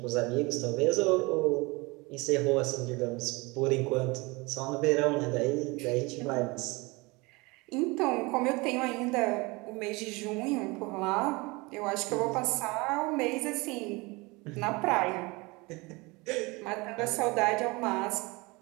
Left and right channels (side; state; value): left; quieter; 25.1 dB